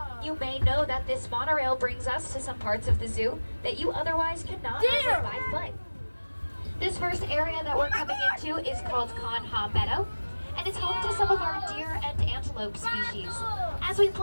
You may know that this monorail brings us to some parts of the zoo that you otherwise cannot visit by foot. This first area that we're coming into is called Conha Meadow, and it's home to some of our deer and antelope species. As we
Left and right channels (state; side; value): inverted; both; correlation -1.00